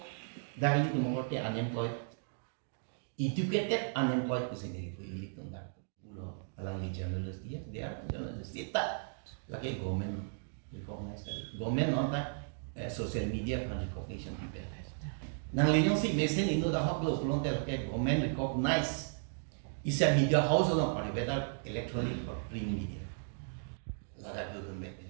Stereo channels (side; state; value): left; silent; digital silence